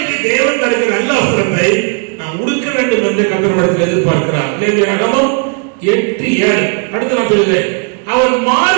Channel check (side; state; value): left; quieter; 37.3 dB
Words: தேவன் தருகிற நல்ல வஸ்திரத்தை நாம் உடுக்க வேண்டும் என்று கர்த்தரிடத்தில் எதிர்பார்க்கிறார். லேவியராகமம் 8:7. அடுத்து நான் சொல்லுகிறேன், அவர்